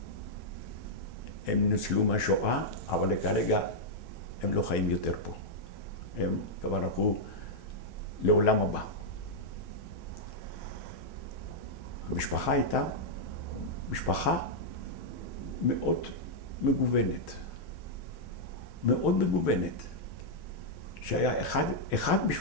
הם נוצלו מהשואה, אבל כרגע הם לא חיים יותר פה. הם כבר הלכו לעולם הבא. המשפחה הייתה משפחה מאוד מגוונת. מאוד מגוונת. שהיה אחד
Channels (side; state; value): right; late; 6.4 ms